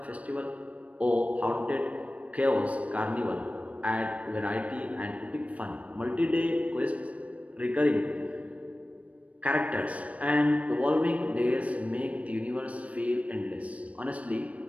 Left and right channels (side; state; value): left; late; 0.066 ms